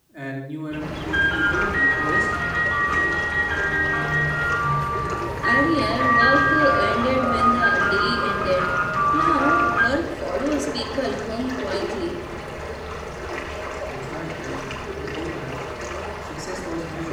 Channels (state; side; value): identical; both; correlation 1.00